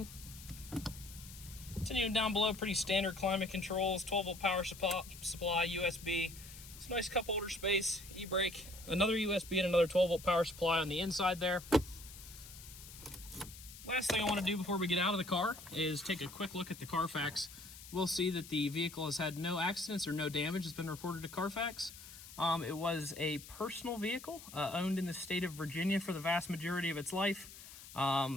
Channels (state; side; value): noise; left; hiss, 16 dB below the sound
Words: Continuing down below, pretty standard climate controls, 12-volt power supply, USB. It's a nice cup holder space, e-brake, another USB and another 12-volt power supply on the inside there. Last thing I want to do before we get out of the car is take a quick look at the Carfax. We'll see that the vehicle has had no accidents or no damage that's been reported to Carfax. It was a personal vehicle owned in the state of Virginia for the vast majority of its life.